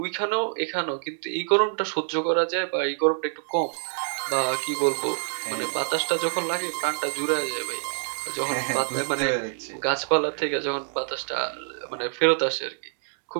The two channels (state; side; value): silent; left; digital silence